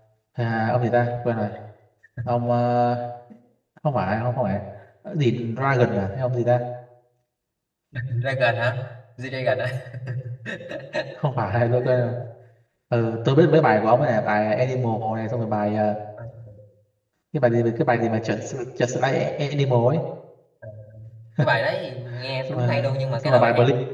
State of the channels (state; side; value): identical; both; correlation 1.00